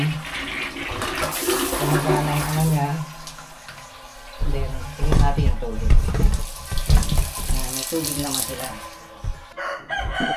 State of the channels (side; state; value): both; identical; correlation 1.00